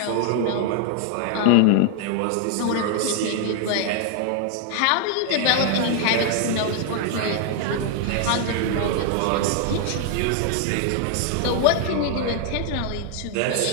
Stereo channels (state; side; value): different; both; correlation 0.00